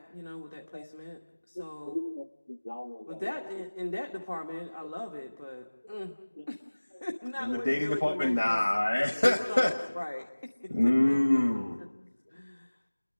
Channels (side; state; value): both; inverted; correlation -1.00